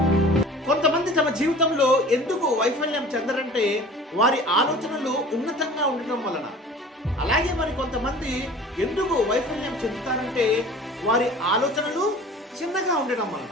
కొంతమంది తమ జీవితంలో ఎందుకు వైఫల్యం చెందరంటే వారి ఆలోచనలు ఉన్నతంగా ఉండటం వలన. అలాగే మరి కొంతమంది ఎందుకు వైఫల్యం చెందుతారంటే వారి ఆలోచనలు చిన్నగా ఉండటం వలన.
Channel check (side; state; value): both; normal; correlation 0.44